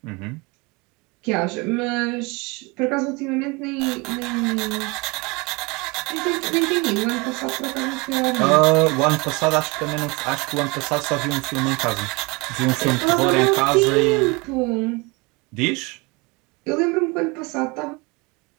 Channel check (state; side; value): quieter; left; 26.3 dB